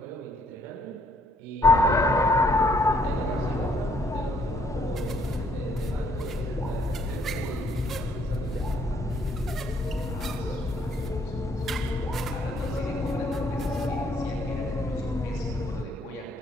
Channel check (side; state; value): both; normal; correlation 0.67